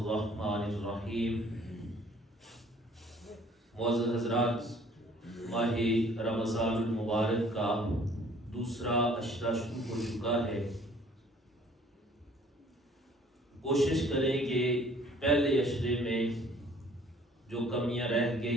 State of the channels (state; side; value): normal; both; correlation 0.56